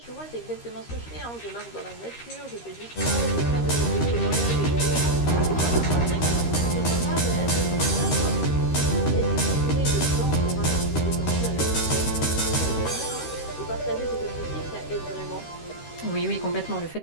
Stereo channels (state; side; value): late; right; 13 ms